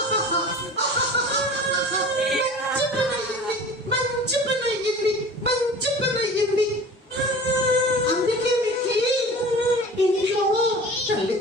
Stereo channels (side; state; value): both; normal; correlation 0.40